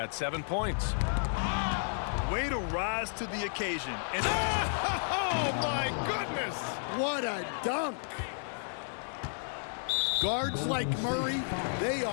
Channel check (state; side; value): silent; right; digital silence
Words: 7 points. Way to rise to the occasion. And oh my goodness! What a dunk! Guards like Murray, they